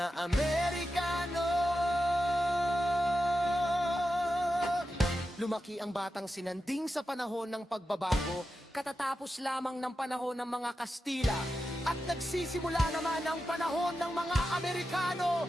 Amerikano. Lumaki ang batang sinanding sa panahon ng pagbabago, katatapos lamang ng panahon ng mga Kastila. At nagsisimula naman ang panahon ng mga Amerikano,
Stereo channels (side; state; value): both; normal; correlation 0.90